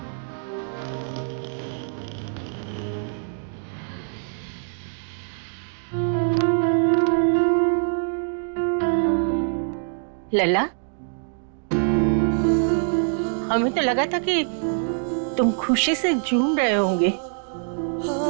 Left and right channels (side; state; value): left; silent; digital silence